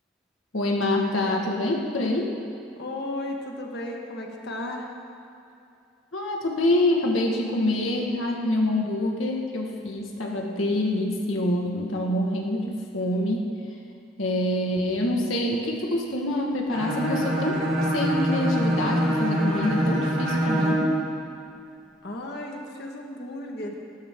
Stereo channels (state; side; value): normal; both; correlation 0.56